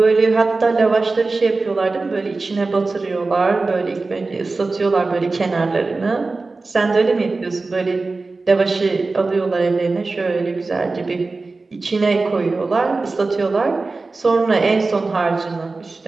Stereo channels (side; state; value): left; quieter; 3.7 dB